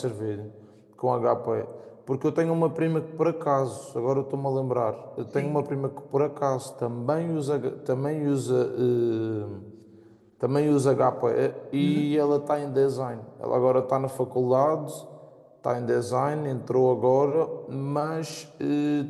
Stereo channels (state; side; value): identical; both; correlation 1.00